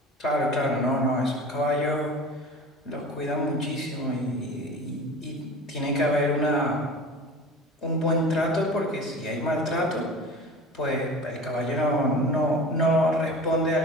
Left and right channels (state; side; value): normal; both; correlation 0.37